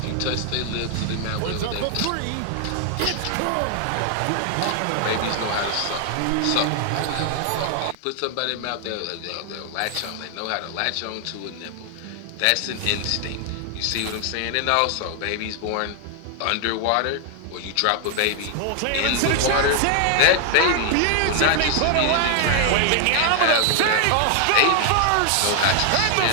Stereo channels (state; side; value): different; both; correlation 0.00